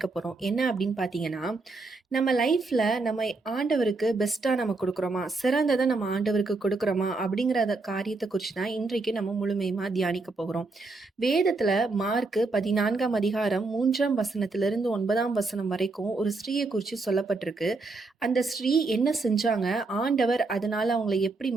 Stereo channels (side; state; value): left; quieter; 3.6 dB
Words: போகிறோம். என்ன அப்படின்னு பார்த்தீங்கன்னா, நம்ம லைஃப்பில் நம்ம ஆண்டவருக்கு பெஸ்ட்டாக நம்ம கொடுக்குறோமா, சிறந்ததை நம்ம ஆண்டவருக்கு கொடுக்குறோமா அப்படிங்கிற காரியத்தை குறித்து தான் இன்றைக்கு நம்ம முழுமையுமாக தியானிக்க போகிறோம். வேதத்தில் மார்க்கு 14ஆம் அதிகாரம் 3ஆம் வசனத்திலிருந்து 9ஆம் வசனம் வரைக்கும் ஒரு ஸ்திரீயை குறித்து சொல்லப்பட்டிருக்கு. அந்த ஸ்திரீ என்ன செஞ்சாங்க, ஆண்டவர் அதனால அவங்களை எப்படி